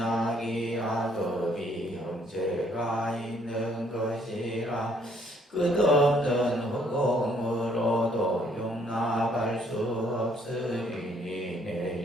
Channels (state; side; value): normal; both; correlation 0.66